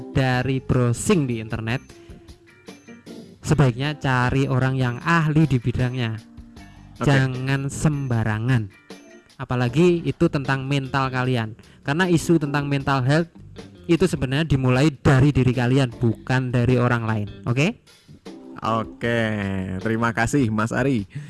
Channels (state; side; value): identical; both; correlation 1.00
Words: browsing di internet, sebaiknya cari orang yang ahli di bidangnya. Oke. Jangan sembarangan, apalagi itu tentang mental kalian, karena isu tentang mental health itu sebenarnya dimulai dari diri kalian, bukan dari orang lain. Oke? Oke, terima kasih Mas Ari.